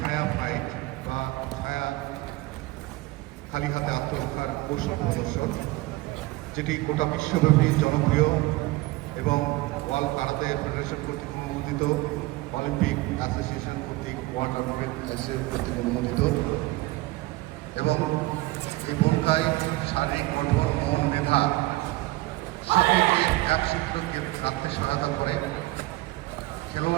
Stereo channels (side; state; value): left; quieter; 20.0 dB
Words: ফাইট বা ছায়া খালি হাতে আত্মরক্ষার কৌশল প্রদর্শন, যেটি গোটা বিশ্বব্যাপী জনপ্রিয় এবং ওয়ার্ল্ড কারাতে ফেডারেশন কর্তৃক অনুমোদিত, অলিম্পিক অ্যাসোসিয়েশন কর্তৃক, ওয়ার্ল্ড অলিম্পিক অ্যাসোসিয়েশন কর্তৃক অনুমোদিত। এবং এই ভূমিকায় শারীরিক গঠন ও মেধা সকলকে এক সূত্রে রাখতে সহায়তা করে।